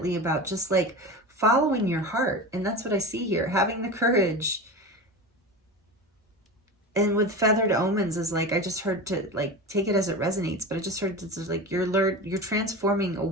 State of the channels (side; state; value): both; normal; correlation 0.27